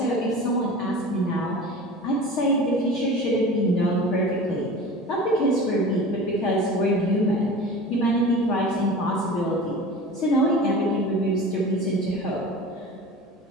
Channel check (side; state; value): both; normal; correlation 0.36